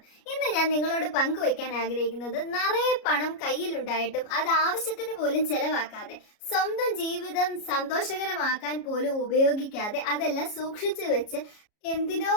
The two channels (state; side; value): late; right; 33 ms